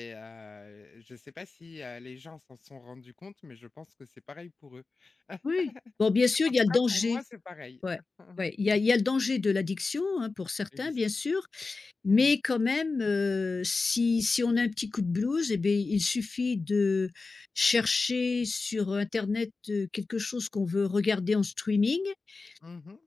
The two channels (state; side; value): quieter; right; 3.9 dB